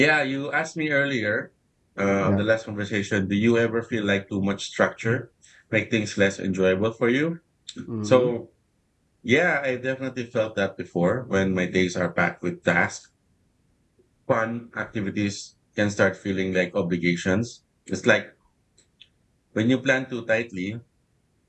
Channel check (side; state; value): both; identical; correlation 1.00